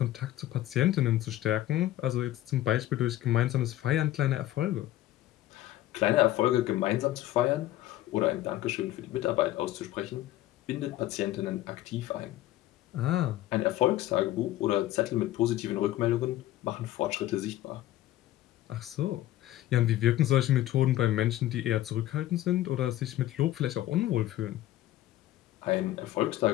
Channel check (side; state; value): right; quieter; 14.4 dB